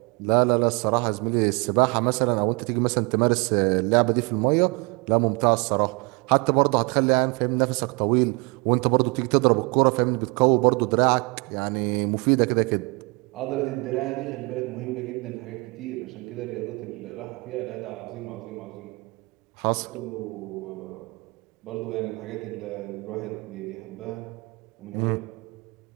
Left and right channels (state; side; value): quieter; left; 28.5 dB